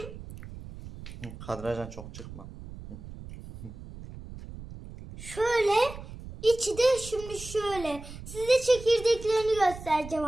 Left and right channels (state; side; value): noise; right; rumble, 14 dB below the sound